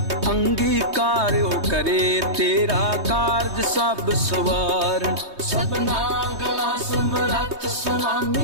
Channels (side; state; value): left; late; 3.2 ms